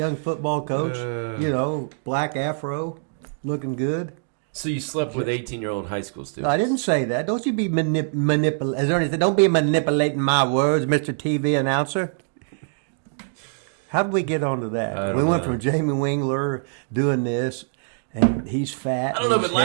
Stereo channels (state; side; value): silent; left; digital silence